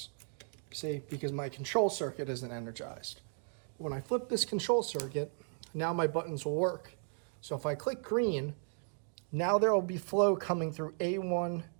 see, because my control circuit isn't energized. When I flip this control circuit, now my buttons will work. So if I click green, now there will be flow coming through A1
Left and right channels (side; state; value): left; silent; 54 dB below the other